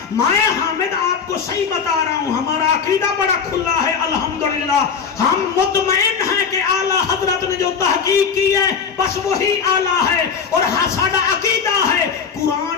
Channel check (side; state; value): right; quieter; 6.3 dB